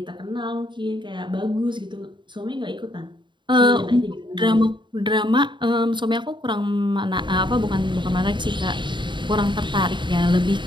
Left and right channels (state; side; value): late; left; 0.23 ms